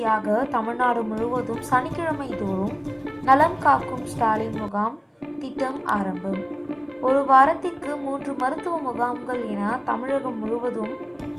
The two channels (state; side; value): identical; both; correlation 1.00